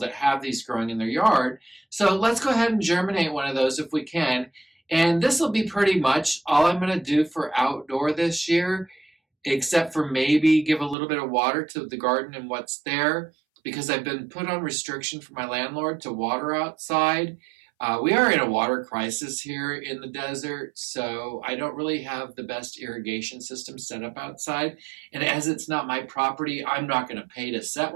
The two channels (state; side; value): drops out; left; at 11.0 s